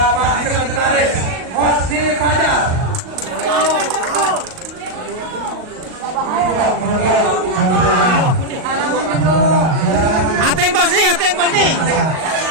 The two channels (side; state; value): left; late; 38 ms